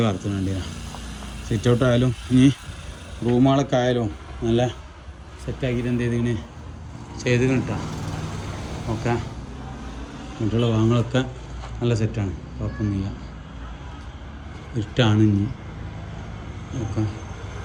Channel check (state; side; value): identical; both; correlation 1.00